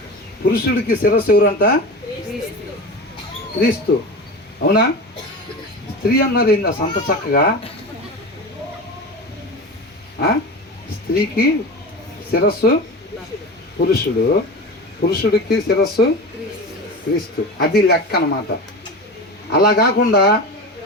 పురుషుడికి శిరస్సు ఎవరంట? క్రీస్తు. అవునా? స్త్రీ అన్నారు ఏంది సంత చక్కగా? స్త్రీకి శిరస్సు పురుషుడు, పురుషుడికి శిరస్సు క్రీస్తు. అది లెక్క అన్నమాట. అలా కాకుండా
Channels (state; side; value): normal; both; correlation 0.29